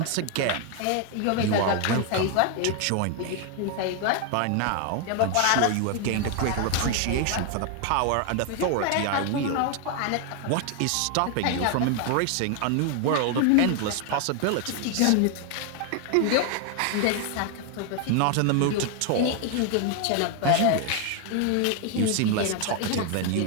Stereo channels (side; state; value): both; different; correlation 0.00